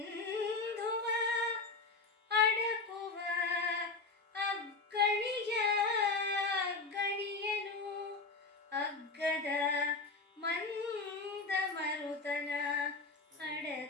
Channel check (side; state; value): right; quieter; 3.9 dB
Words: ಅಡಕುವ ಗಣಿಯನು ಅಗ್ಗದ ಮಂದ ಮರುತನ